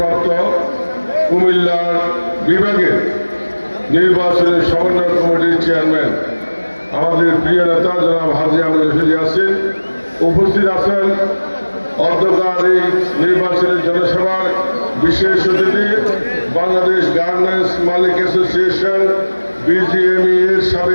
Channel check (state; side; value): inverted; both; correlation -1.00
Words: কুমিল্লার বিভাগের নির্বাচনের সমন্বয় কমিটির চেয়ারম্যান আমাদের প্রিয় নেতা জনাব হাজী আমিনুর রশিদ ইয়াসিন, উপস্থিত আছেন অধ্যকার এই নির্বাচনের জনসভার বিশেষ অতিথি বাংলাদেশ গার্মেন্টস মালিক অ্যাসোসিয়েশন বিজিএমই এর